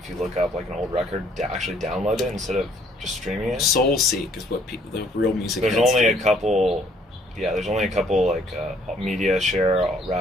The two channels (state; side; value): normal; both; correlation 0.63